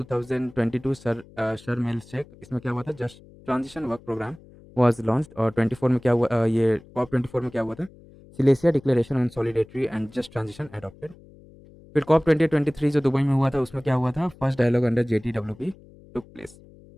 Sharm el Sheikh, इसमें क्या हुआ था, just transition work programme was launched। और 24 में क्या हुआ, ये COP24 में क्या हुआ था, Silesia declaration on solidarity and just transition adopted. फिर COP2023 जो दुबई में हुआ था, उसमें क्या हुआ था, first dialogue under JTWP took place.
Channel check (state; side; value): noise; left; hum, 23 dB below the sound